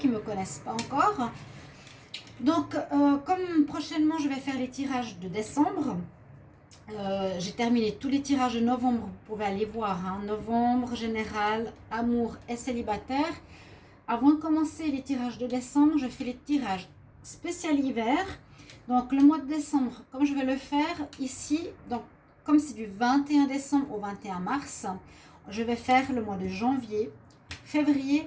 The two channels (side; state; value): both; identical; correlation 1.00